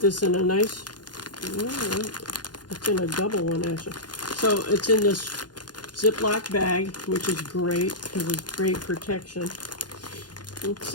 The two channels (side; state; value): right; late; 0.70 ms